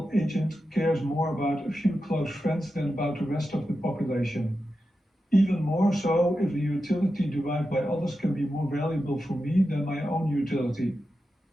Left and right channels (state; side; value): normal; both; correlation 0.90